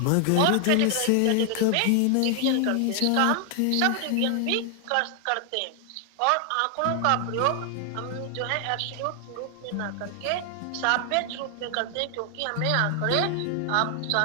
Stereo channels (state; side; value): different; both; correlation 0.00